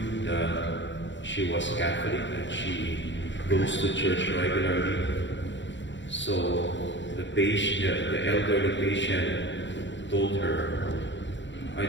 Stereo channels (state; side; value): late; right; 0.53 ms